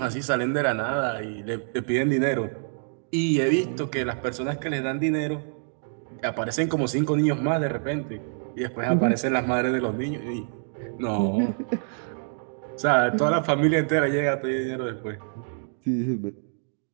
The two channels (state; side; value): silent; left; 61 dB below the other